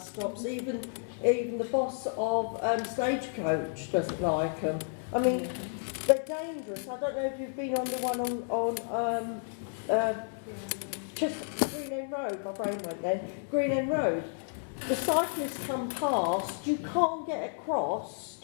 stops. Even the boss of Stagecoach doesn't like them. I mean, they're dangerous. I don't know if you've been on the one on Green End Road. My brain went then. Green End Road. The cyclists come past. You can't get across.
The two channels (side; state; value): right; silent; digital silence